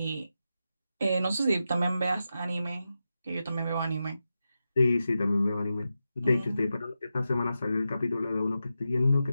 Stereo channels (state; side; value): inverted; both; correlation -0.90